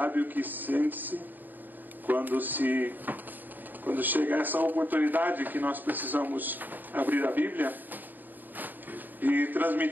o que sente-se quando chega essa oportunidade que nós precisamos abrir a Bíblia e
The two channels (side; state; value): left; late; 0.088 ms